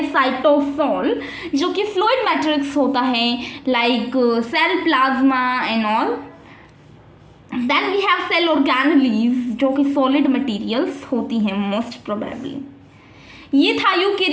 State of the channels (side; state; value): both; identical; correlation 1.00